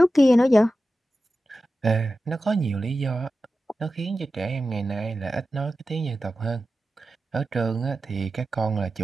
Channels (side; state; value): both; normal; correlation 0.93